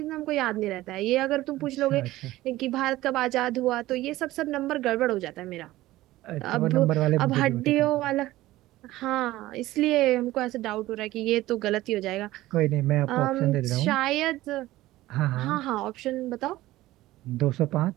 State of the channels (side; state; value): left; quieter; 16.7 dB